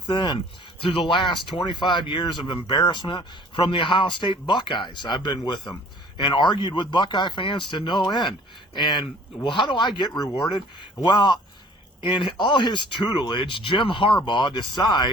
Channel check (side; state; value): both; normal; correlation 0.53